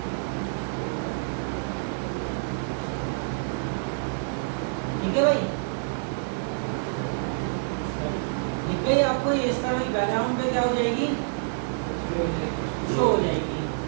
ठीक है भाई, दिख गई आपको ये, इस तरह बैकग्राउंड पे क्या हो जाएगी, शो हो जाएगी।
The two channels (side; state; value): left; silent; 60 dB below the other